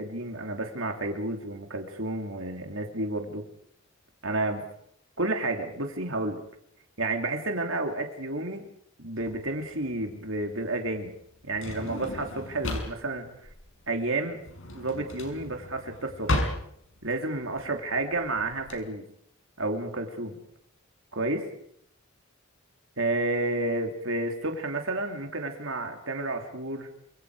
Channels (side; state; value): both; normal; correlation -0.01